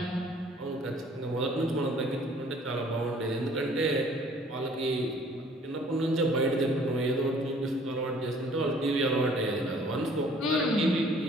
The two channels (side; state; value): both; normal; correlation 0.56